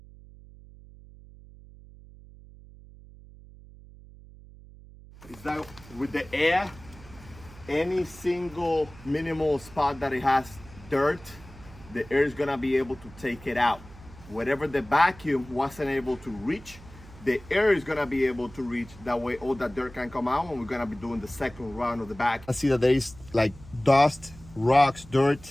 Is that with the air, any single minimal spot that it has dirt, the air is gonna be able to take it out. Whatever the vacuum wasn't able to reach, the air is gonna be able to reach. That way all that dirt can come out, and we're gonna be doing the second round of the vacuum. I see that there is like dust, rocks,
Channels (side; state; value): right; noise; hum, 20 dB below the sound